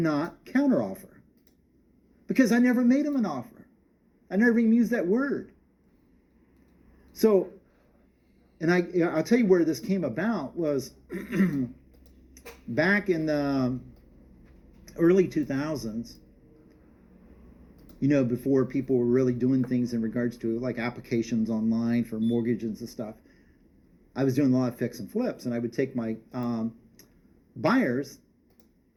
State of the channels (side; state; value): both; identical; correlation 1.00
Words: counter offer because I never made them an offer. I never even used that word. So, and I'll tell you where this came about was back in the early 2000s, before people were really doing things in regards to like applications online for mortgages and stuff. I was doing a lot of fix and flips, and I would take my buyers